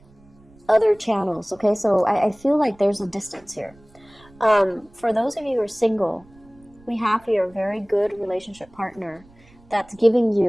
other channels. Okay, so I feel like there's a distance here. For those of you who are single, we have here a very good relationship partner that's giving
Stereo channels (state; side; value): noise; right; rumble, 27 dB below the sound